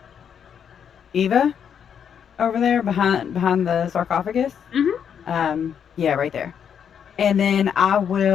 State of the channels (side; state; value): right; quieter; 8.0 dB